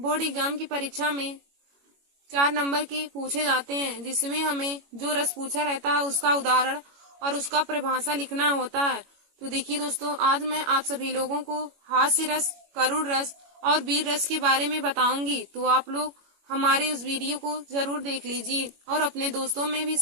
एग्जाम की परीक्षा में 4 नंबर के पूछे जाते हैं, जिसमें हमें जो रस पूछा रहता है उसका उदाहरण और उसका परिभाषा लिखना होता है। तो देखिए दोस्तों, आज मैं आप सभी लोगों को हास्य रस, करुण रस और वीर रस के बारे में बताऊंगी। तो आप लोग हमारे उस वीडियो को जरूर देख लीजिए और अपने दोस्तों में भी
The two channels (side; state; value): left; late; 21 ms